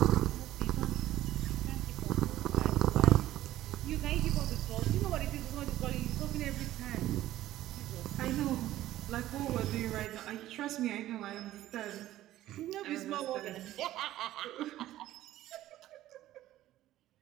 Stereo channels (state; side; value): quieter; left; 14.3 dB